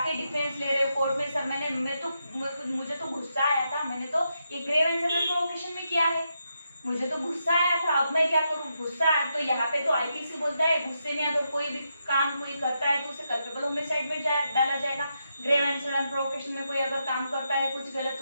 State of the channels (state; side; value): inverted; both; correlation -0.83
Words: डिफेंस ले रहे हो कोर्ट में, सर मुझे तो गुस्सा आया था, मैंने तो ये ग्रेव एंड सडन प्रोवोकेशन में किया है। मुझे तो गुस्सा आया था, अब मैं क्या करूँ, गुस्सा आया तो यहाँ पे तो आईपीसी बोलता है गुस्से में अगर कोई भी काम कोई करता है तो उसे कल्पेबल होमिसाइड में डाला जाएगा। ग्रेव एंड सडन प्रोवोकेशन में कोई अगर काम करता है कुछ गलत,